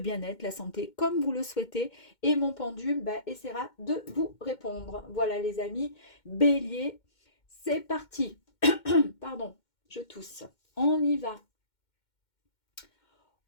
la santé, comme vous le souhaitez. Et mon pendule bah, essaiera de vous répondre. Voilà les amis, bélier, c'est parti. Pardon, je tousse. On y va.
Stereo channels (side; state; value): right; late; 2.1 ms